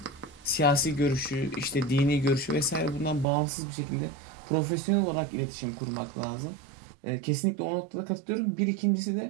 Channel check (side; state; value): left; drops out; at 3.2 s